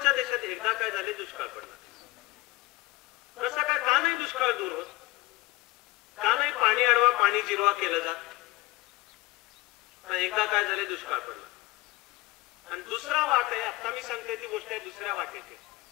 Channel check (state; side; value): quieter; right; 20.8 dB